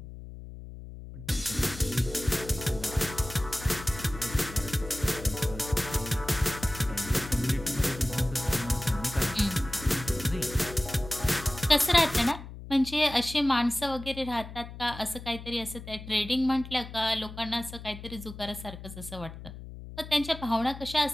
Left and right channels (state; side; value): noise; left; hum, 13 dB below the sound